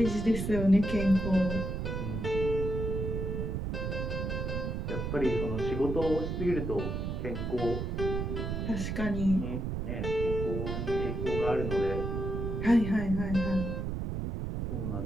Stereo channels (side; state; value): right; noise; rumble, 2 dB below the sound